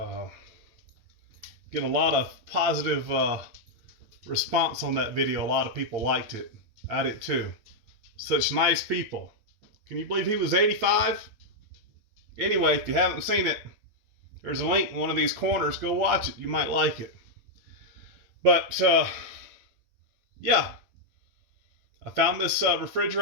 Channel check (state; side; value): late; left; 9.2 ms